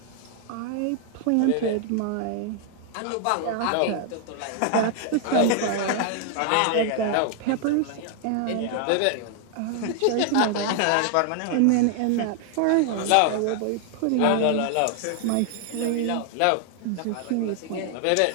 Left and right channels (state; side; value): different; both; correlation 0.00